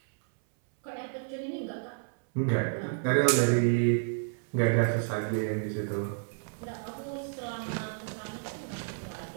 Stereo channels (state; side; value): silent; left; 57 dB below the other